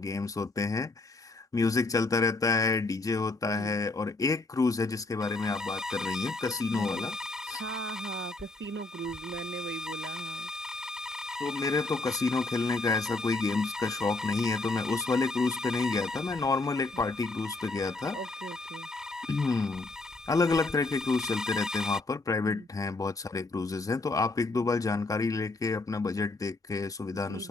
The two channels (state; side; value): quieter; right; 3.3 dB